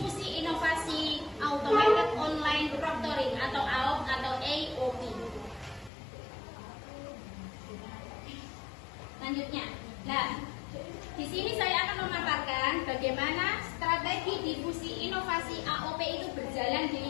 inovasi Automated Online Proctoring atau AOP atau AOP. Selanjutnya, di sini saya akan memaparkan bagaimana strategi difusi inovasi AOP itu berjalan di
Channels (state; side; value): drops out; right; at 5.9 s